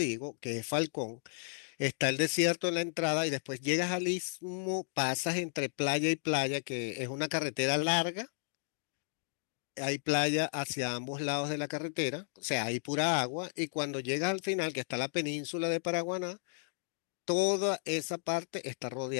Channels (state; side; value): silent; right; digital silence